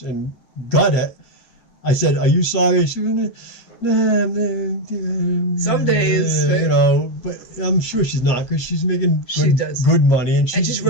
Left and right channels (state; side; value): late; right; 8.4 ms